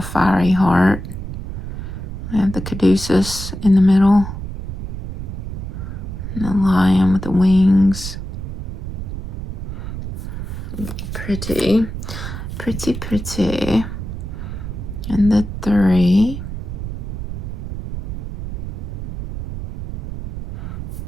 fiery heart. We have the caduceus in the middle. And the lion with the wings. Pretty. Pretty, pretty. And the 3.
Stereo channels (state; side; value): noise; right; rumble, 6 dB below the sound